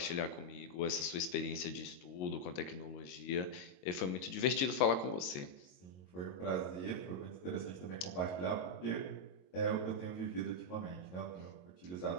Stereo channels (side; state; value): right; late; 22 ms